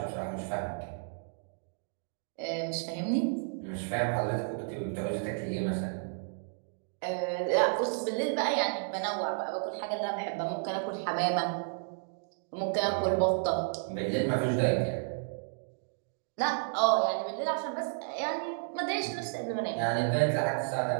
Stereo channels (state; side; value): silent; left; digital silence